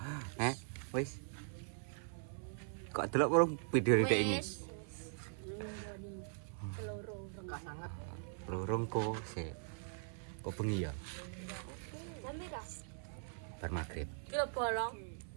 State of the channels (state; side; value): silent; left; 51 dB below the other